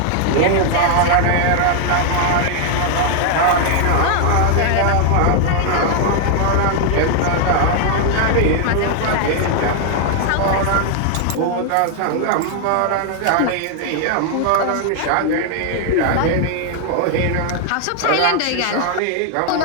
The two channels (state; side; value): different; both; correlation 0.00